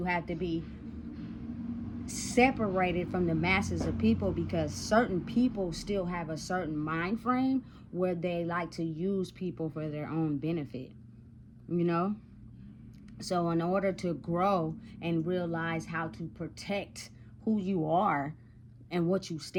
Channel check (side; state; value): both; identical; correlation 1.00